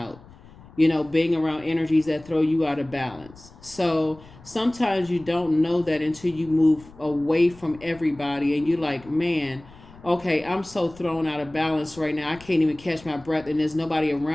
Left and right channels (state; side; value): noise; left; rumble, 22 dB below the sound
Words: Being around energies that throw you out of balance. So sometimes you don't know that until you move away from everybody and you're like, man, okay, I'm so thrown out of balance right now. I can't even catch my breath, and there's nobody